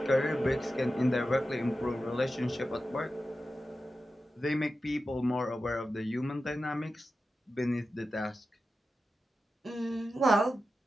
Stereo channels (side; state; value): both; normal; correlation 0.92